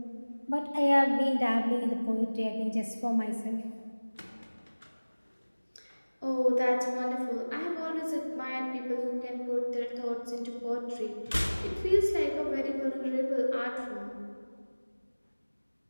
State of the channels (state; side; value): inverted; both; correlation -1.00